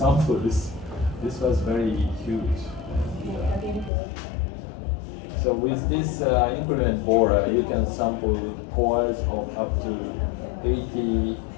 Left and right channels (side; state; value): right; drops out; at 3.9 s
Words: this. This was very huge. And, so with this increment borer, you can sample cores of up to 80